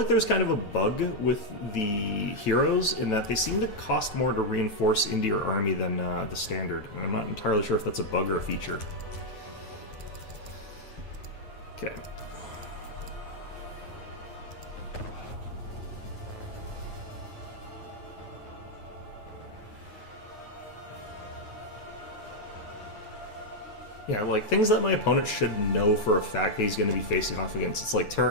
there's kind of a bug with the heroes in that they seem to cost more to reinforce into your army than the standard, and I'm not entirely sure if that's a bug or a feature. Okay. Yeah, like things that my opponent should know for a fact that he's going to be facing off against. It's like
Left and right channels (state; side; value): late; right; 9.4 ms